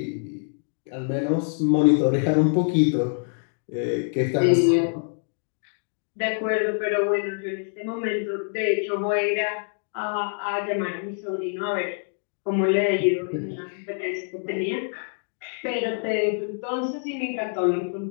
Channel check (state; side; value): silent; right; 61 dB below the other